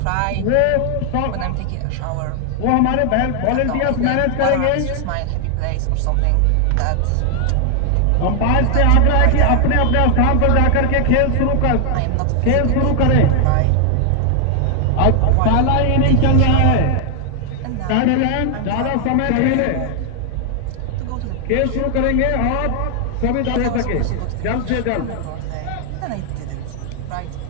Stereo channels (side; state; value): both; different; correlation 0.00